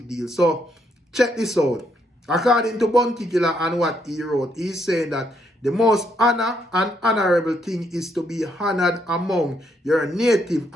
deal. So check this out. According to Bounty Killa and what he wrote, he's saying that the most honor and honorable thing is to be honored among your native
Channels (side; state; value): both; normal; correlation 0.74